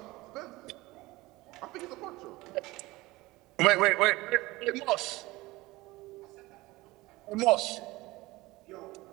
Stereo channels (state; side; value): quieter; left; 20.2 dB